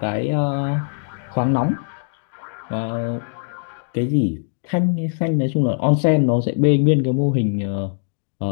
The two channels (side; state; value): right; silent; 62 dB below the other